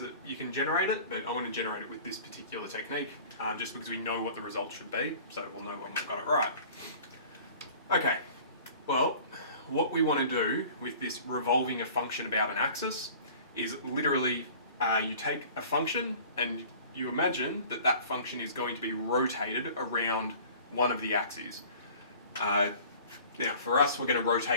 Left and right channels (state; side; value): inverted; both; correlation -0.46